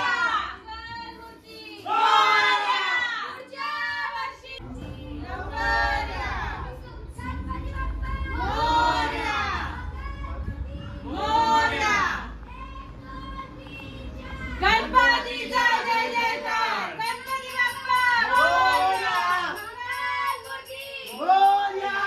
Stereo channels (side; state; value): both; identical; correlation 1.00